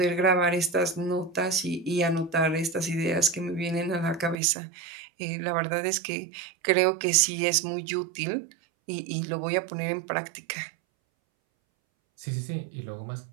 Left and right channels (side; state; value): left; drops out; at 4.4 s